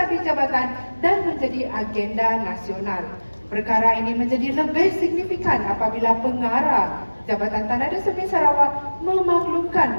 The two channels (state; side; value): inverted; both; correlation -1.00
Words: jabatan dan menjadi agenda nasional. Perkara ini menjadi lebih signifikan apabila pengarah Jabatan Tanah dan Survey Sarawak